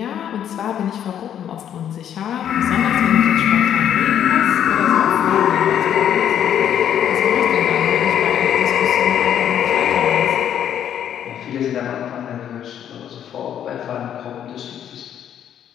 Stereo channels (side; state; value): right; quieter; 9.8 dB